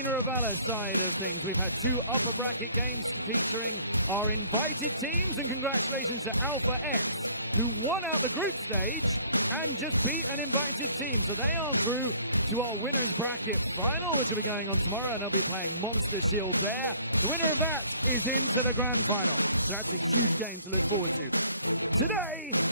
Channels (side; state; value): both; inverted; correlation -0.56